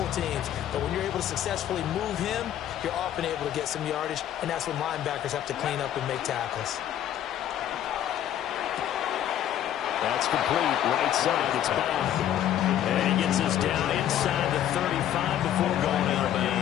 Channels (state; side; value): quieter; right; 11.2 dB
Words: teams. But when you're able to successfully move him, you're often able to get some yardage. And that's when linebackers have to clean up and make tackles. That's complete. Right side. It's back. And he gets us down inside the 35 before going out of